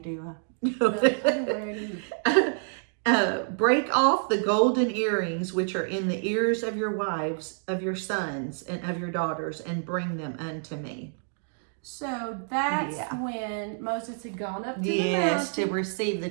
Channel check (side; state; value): left; silent; digital silence